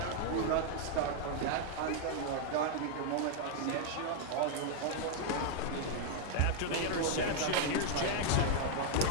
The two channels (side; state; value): both; different; correlation 0.00